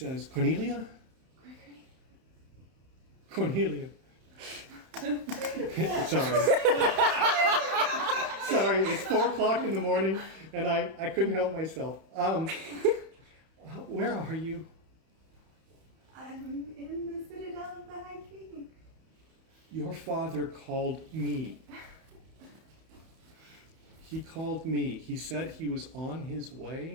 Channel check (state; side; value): late; left; 31 ms